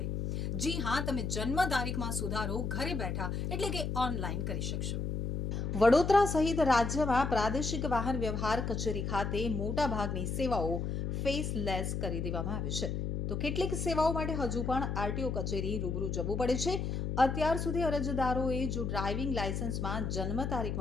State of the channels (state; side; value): noise; left; hum, 2 dB below the sound